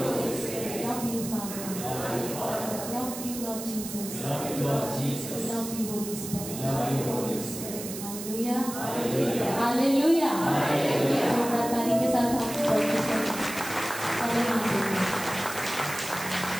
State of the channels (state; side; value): noise; right; hiss, 9 dB below the sound